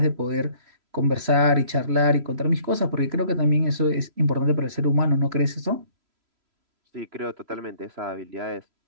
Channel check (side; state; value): left; late; 3.0 ms